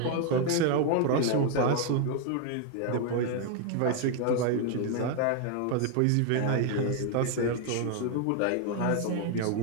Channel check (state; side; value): different; both; correlation 0.00